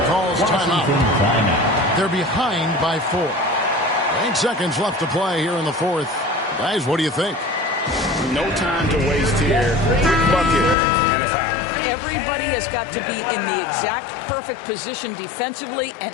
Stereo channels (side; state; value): right; drops out; at 10.8 s